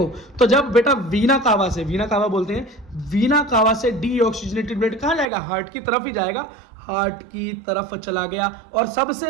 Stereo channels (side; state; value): left; drops out; at 5.2 s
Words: तो जब बेटा वीना कावा बोलते हैं, वीना कावा से डीऑक्सीजनेटेड ब्लड कहां जाएगा? हार्ट की तरफ ही जाएगा। हार्ट की तरफ चला गया और